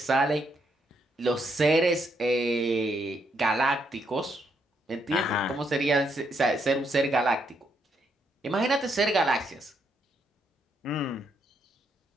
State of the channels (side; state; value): both; normal; correlation 0.76